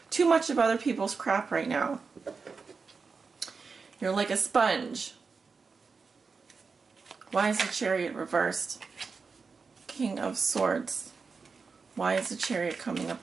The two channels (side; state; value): left; quieter; 4.9 dB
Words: too much of other people's crap right now. You're like a sponge. Why is the Chariot reversed? King of Swords. Why is the Chariot coming